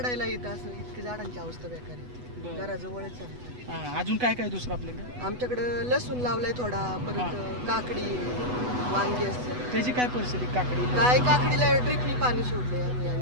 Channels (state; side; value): late; left; 8.1 ms